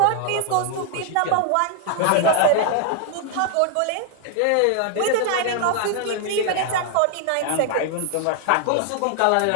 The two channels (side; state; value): both; different; correlation 0.00